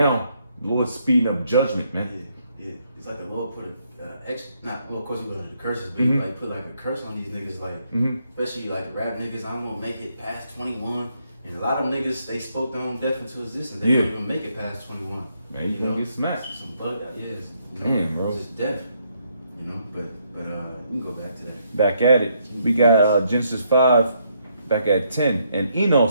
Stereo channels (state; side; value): inverted; both; correlation -0.74